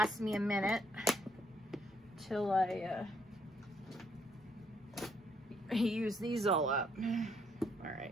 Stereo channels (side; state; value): both; normal; correlation 0.71